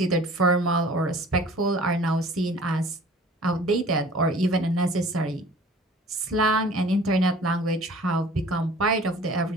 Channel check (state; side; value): normal; both; correlation 0.48